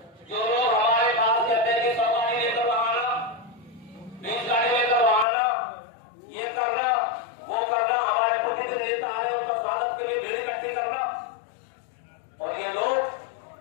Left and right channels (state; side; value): drops out; right; at 5.2 s